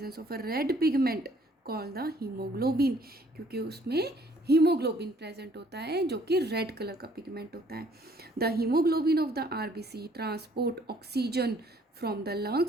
of a red pigment called the haemoglobin, क्योंकि उसमें हीमोग्लोबिन प्रेजेंट होता है जो कि रेड कलर का पिगमेंट होता है। The haemoglobin of the RBC transport oxygen from the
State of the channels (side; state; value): both; normal; correlation 0.61